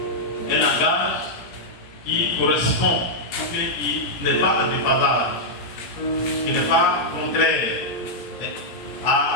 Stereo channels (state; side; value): late; right; 17 ms